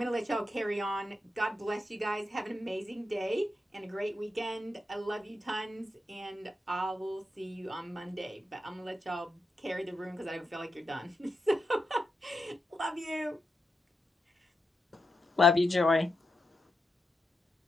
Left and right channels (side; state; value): both; normal; correlation 0.86